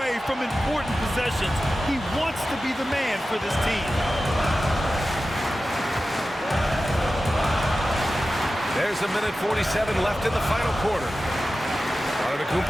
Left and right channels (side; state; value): both; normal; correlation 0.94